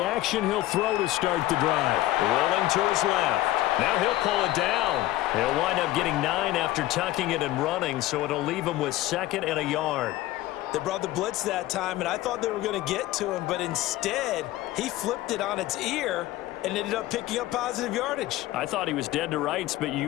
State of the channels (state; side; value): quieter; right; 15.9 dB